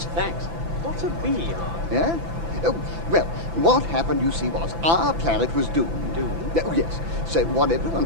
Thanks. What's a B Ark? Yeah? Oh, well, what happened, you see, was our planet was doomed. Doomed? Oh, yes. So what everyone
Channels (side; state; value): left; late; 6.0 ms